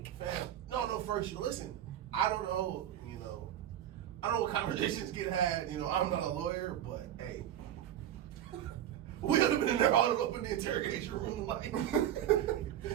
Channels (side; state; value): left; quieter; 11.1 dB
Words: No, first, listen, I don't know, I don't know what conversations get had, I'm not a lawyer, but hey, we would have been in there all up in the interrogation room, like,